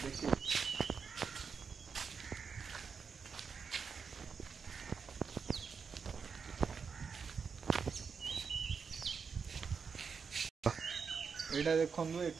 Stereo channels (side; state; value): left; quieter; 5.9 dB